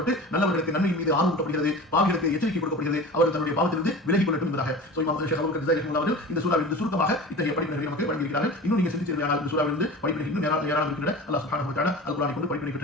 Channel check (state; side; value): normal; both; correlation 0.35